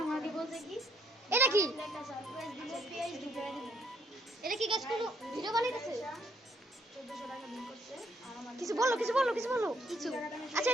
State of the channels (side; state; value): both; normal; correlation 0.69